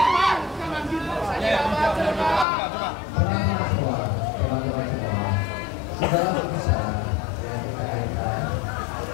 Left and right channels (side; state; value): right; drops out; at 2.5 s